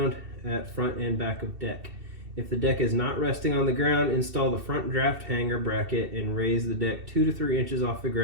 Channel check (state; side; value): late; left; 2.7 ms